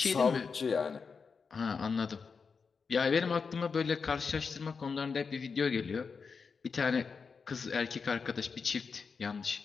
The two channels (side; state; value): right; quieter; 5.4 dB